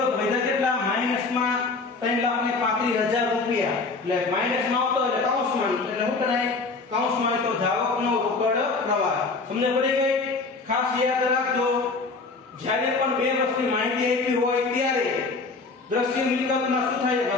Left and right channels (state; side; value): quieter; right; 4.0 dB